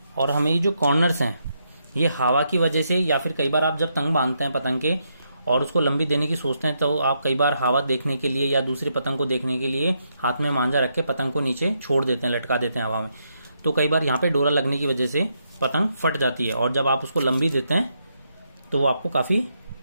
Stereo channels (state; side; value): inverted; both; correlation -0.79